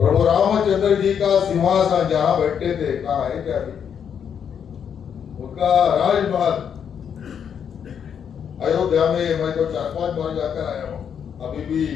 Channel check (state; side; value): quieter; right; 7.9 dB